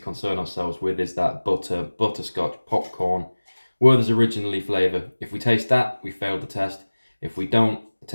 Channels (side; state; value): both; inverted; correlation -1.00